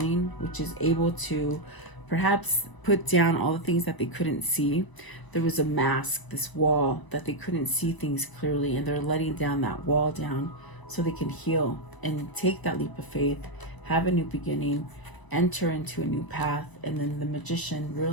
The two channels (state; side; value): late; right; 1.0 ms